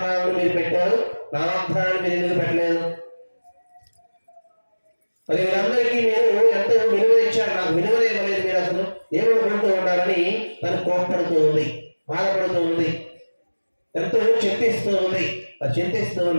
మీరు పెట్టారు, నా వాగ్దానాన్ని మీరు ఎందుకు పెట్టలేదు? మరి వీళ్ళందరికీ మీరు ఎంతో విలువ ఇచ్చారు, నాకు విలువ ఇవ్వలేదు, మీరు అసలు ఏమనుకుంటూ ఉన్నారని తను కోప్పడుతూ ఉంది, బాధపడుతూ ఉంది, ఎంతో చింతిస్తూ ఉంది. మరి చింతిస్తూ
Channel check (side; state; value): both; inverted; correlation -1.00